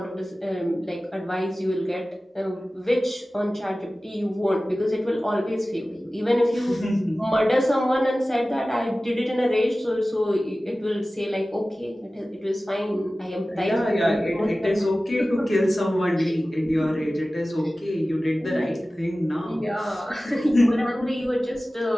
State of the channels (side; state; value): both; normal; correlation 0.96